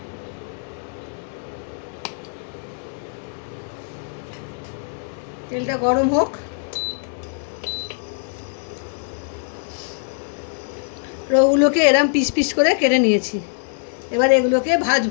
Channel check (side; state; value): right; silent; 63 dB below the other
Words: তেলটা গরম হোক। রোগুলোকে এরম পিস পিস করে কেটে নিয়েছি, এবার এগুলোকে